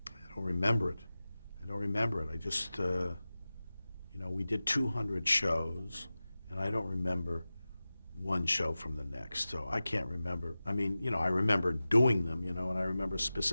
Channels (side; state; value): both; inverted; correlation -0.96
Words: I don't remember it. I just, we did 200 shows, and I don't remember one show from the next, so I can't remember. I mean, I remember doing them, and I remember